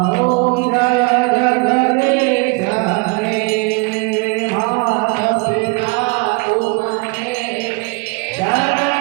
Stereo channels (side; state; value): left; quieter; 29.8 dB